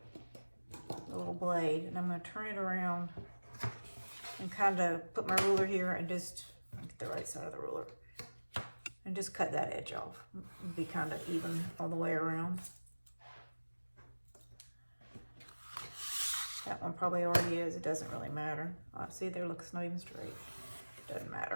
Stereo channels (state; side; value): inverted; both; correlation -1.00